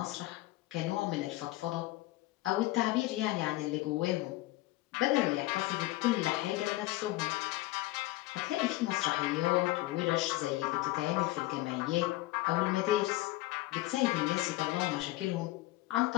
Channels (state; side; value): quieter; right; 18.5 dB